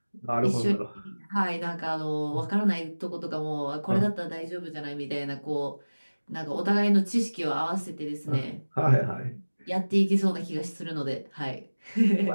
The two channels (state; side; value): inverted; both; correlation -1.00